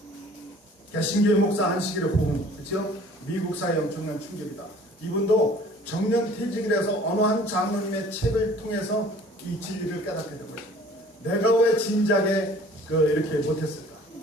개신교의 목사 안식일의 호응, 그렇죠? 미국 사회에 엄청난 충격이다. 이분도 정년 퇴직을 해서 어느 한 장로님의 책을 통해서 이 진리를 깨닫게 된 것입니다. 내가 왜 진작에 이렇게 못했을까?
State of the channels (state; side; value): normal; both; correlation 0.51